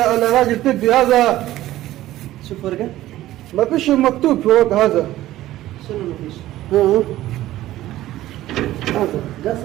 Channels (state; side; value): quieter; left; 14.9 dB